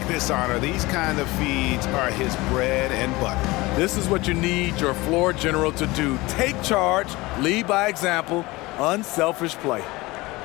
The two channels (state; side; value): quieter; right; 21.4 dB